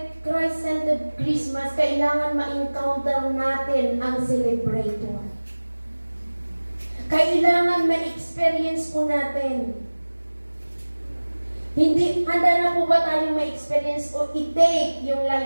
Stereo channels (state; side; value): inverted; both; correlation -1.00